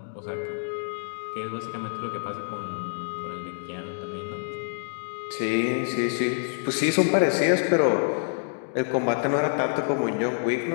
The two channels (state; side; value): silent; right; digital silence